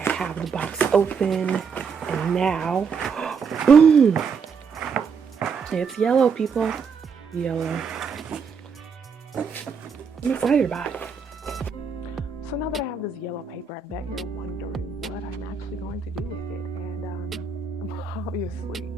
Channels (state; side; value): quieter; left; 5.8 dB